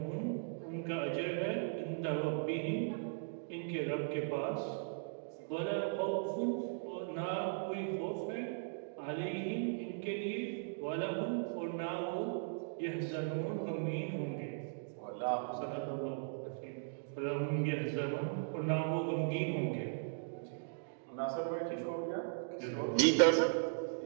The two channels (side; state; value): left; silent; digital silence